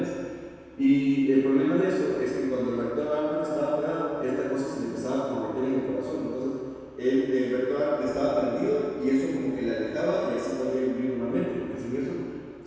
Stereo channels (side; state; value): both; identical; correlation 1.00